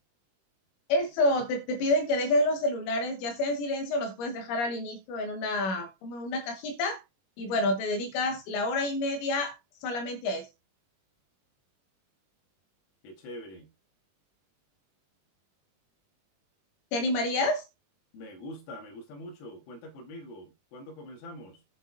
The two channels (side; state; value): right; late; 21 ms